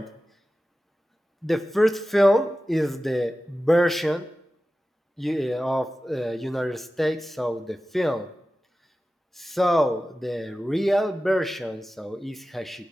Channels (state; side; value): normal; both; correlation 0.95